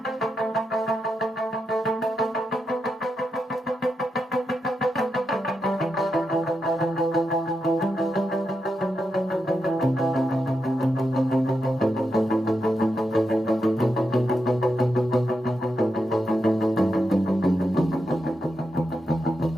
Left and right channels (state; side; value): normal; both; correlation 0.86